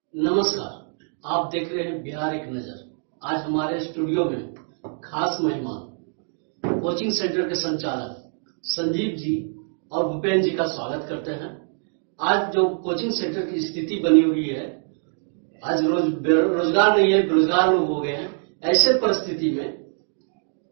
नमस्कार, आप देख रहे हैं बिहार एक नजर। आज हमारे स्टूडियो में खास मेहमान कोचिंग सेंटर के संचालक संजीव जी और भूपेंद्र जी का स्वागत करते हैं। आज जो कोचिंग सेंटर की स्थिति बनी हुई है, आज रोजगार नहीं है, बेरोजगार लोग हो गए हैं। ऐसे परिस्थिति में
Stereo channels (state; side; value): silent; left; 62 dB below the other